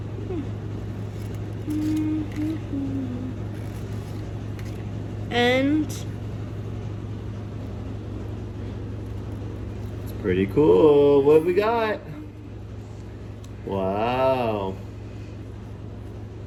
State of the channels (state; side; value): identical; both; correlation 1.00